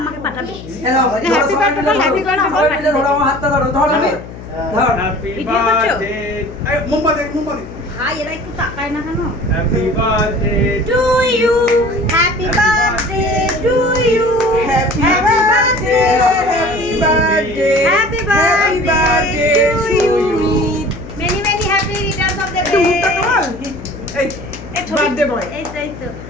আমাকে পাঠাবে হ্যাপি বার্থডে ধরো আমার হাতটা ধরো ধর তুমি ধর হ্যাপি বার্থডে এই মোমবাতি ভাই এরা একটু তাকায় না কেন happy birthday to you happy birthday to you happy birthday happy birthday to you many many happy returns of the day এই বার্থডে বয় এই তো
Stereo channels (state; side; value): noise; left; hum, 14 dB below the sound